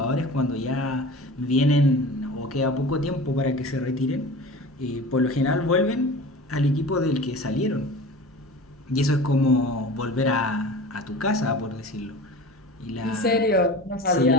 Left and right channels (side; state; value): both; normal; correlation 0.36